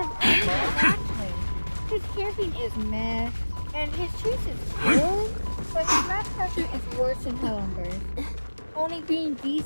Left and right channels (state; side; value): inverted; both; correlation -1.00